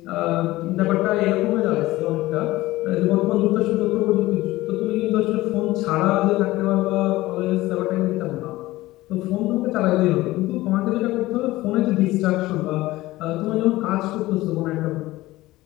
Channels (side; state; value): right; quieter; 17.9 dB